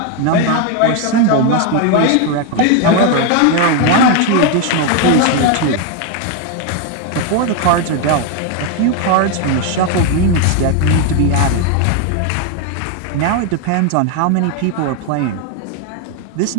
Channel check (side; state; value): both; different; correlation 0.01